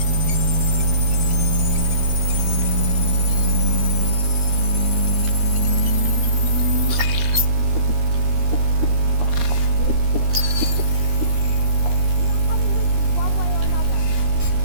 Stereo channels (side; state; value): left; late; 13 ms